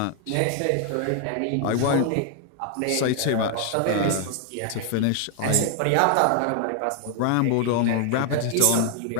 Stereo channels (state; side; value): different; both; correlation 0.00